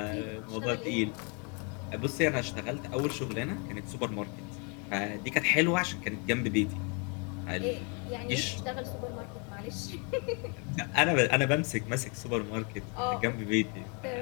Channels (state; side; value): quieter; right; 35.0 dB